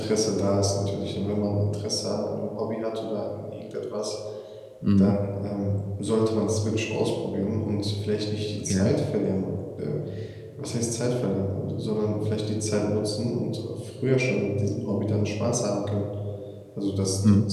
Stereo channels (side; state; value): both; identical; correlation 1.00